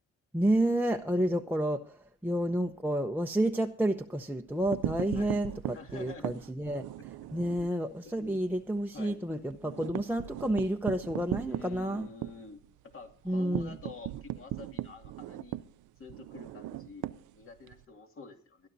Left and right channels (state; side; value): normal; both; correlation 0.80